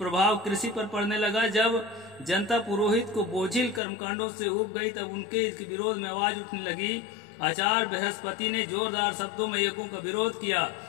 कृषि पर पड़ने लगा। जब जनता पुरोहित को बोझिल कर्मकांडों से उब गई, तब उनके विरोध में आवाज उठने लगी। आचार्य बृहस्पति ने जोरदार शब्दों में यज्ञों का विरोध किया।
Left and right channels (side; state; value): right; drops out; at 3.8 s